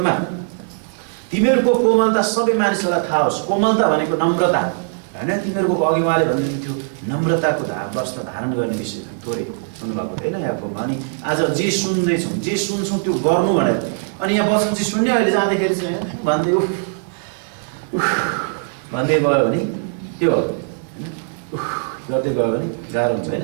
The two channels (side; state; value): left; silent; digital silence